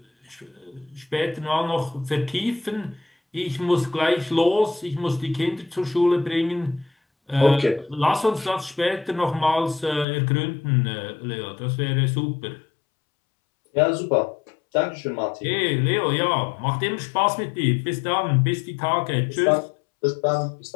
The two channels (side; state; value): right; drops out; at 10.1 s